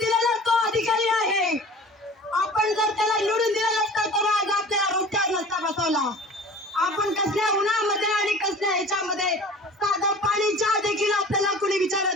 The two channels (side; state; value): both; normal; correlation 0.42